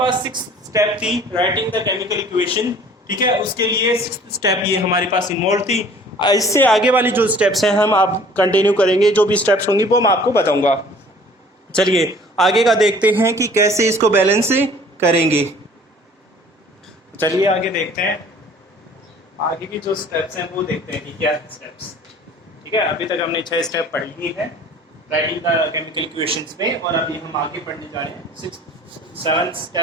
6 स्टेप थी राइटिंग द केमिकल इक्वेशन। ठीक है, उसके लिए 6 स्टेप ये हमारे पास इन्वॉल्व थी। इससे आगे वाली जो स्टेप्स हैं हम आप कंटिन्यू करेंगे, जो भी स्टेप्स होंगी वो मैं आपको बताऊंगा। चलिए आगे का देखते हैं कि कैसे इसको बैलेंस करेंगे। चलिए आगे देखते हैं, आगे की जो स्टेप्स हैं वो देखते हैं कि क्या स्टेप्स। ठीक है, अभी तक हमने 6 स्टेप पढ़ लिए हैं राइटिंग द केमिकल इक्वेशंस में, और अभी हम आगे पढ़ने जा रहे हैं 7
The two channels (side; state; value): both; normal; correlation 0.51